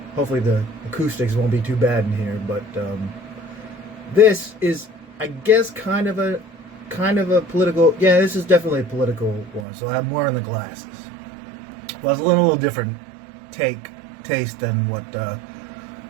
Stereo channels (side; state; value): left; drops out; at 9.7 s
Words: hopefully the acoustics won't be too bad in here. But this is, I guess, kind of a political. Yeah, this is definitely a political one. So I have more on the glasses. Well, it's a little different taste than what the